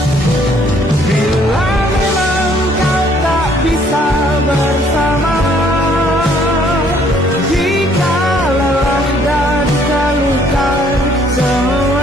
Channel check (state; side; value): normal; both; correlation 0.63